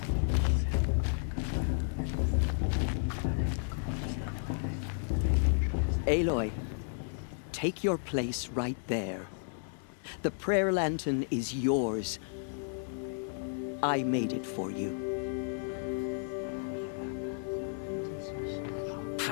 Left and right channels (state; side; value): silent; right; 56 dB below the other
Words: Aloy, take your place right there. The prayer lantern is yours. I made it for you.